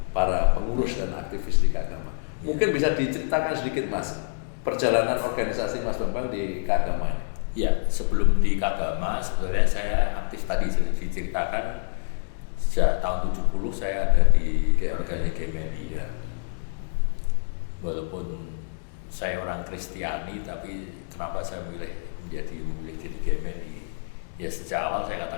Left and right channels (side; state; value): right; silent; digital silence